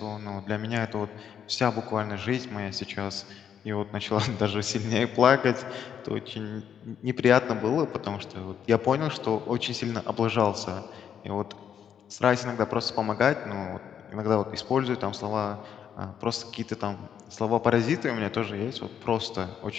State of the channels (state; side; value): quieter; right; 8.6 dB